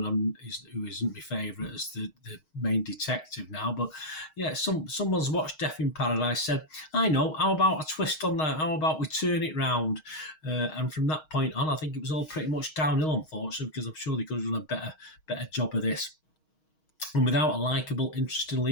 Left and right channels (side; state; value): right; late; 6.4 ms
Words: who isn't my favourite as the main detective now, but yeah, someone's watched Death in Paradise, said, I know, how about a twist on that? How about we turn it round? And from that point on, I think it was all pretty much downhill, unfortunately, because I'm sure they could have done a better job of this. And without a likeable, interesting